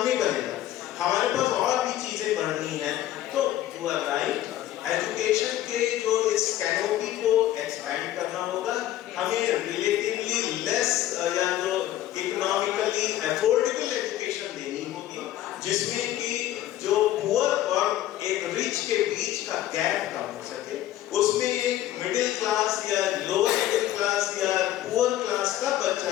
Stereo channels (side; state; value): right; quieter; 13.2 dB